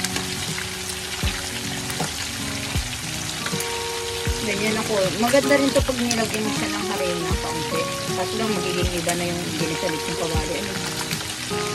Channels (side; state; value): both; identical; correlation 1.00